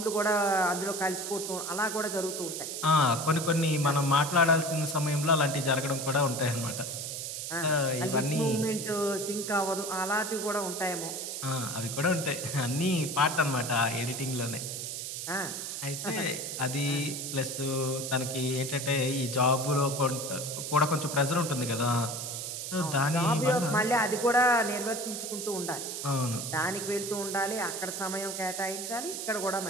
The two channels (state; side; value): noise; right; hiss, 5 dB below the sound